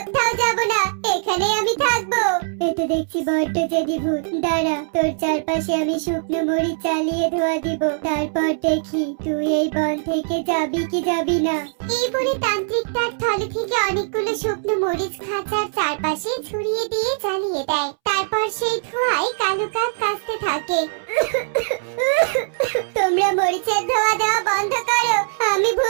যাব না, এখানেই আমি থাকবো। এতে দেখছি বড্ড জেদি ভূত। দাঁড়া, তোর চারপাশে আমি শুকনো মরিচ চালিয়ে ধোয়া দিব, তারপর দেখি তুই এই বন থেকে যাবি কি যাবি না। এই বলে তান্ত্রিক তার থলে থেকে অনেকগুলো শুকনো মরিচ খাঁচার চারপাশে ছড়িয়ে দিয়ে জ্বালিয়ে দেয়। তারপর সেই ধোঁয়ায় কালু কাক কাশতে থাকে। তোমরা মরিচের ধোঁয়া দেওয়া বন্ধ করো। আমি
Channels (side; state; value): left; silent; 65 dB below the other